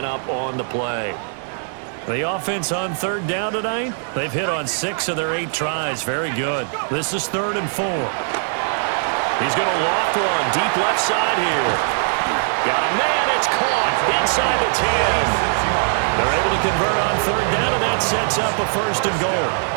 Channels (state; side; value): silent; left; 57 dB below the other